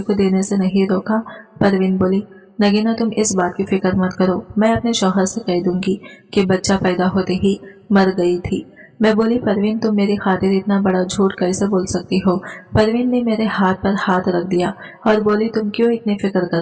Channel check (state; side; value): identical; both; correlation 1.00